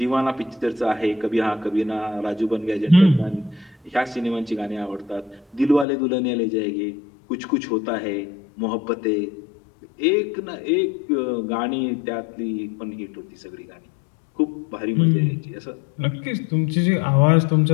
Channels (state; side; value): drops out; right; at 5.9 s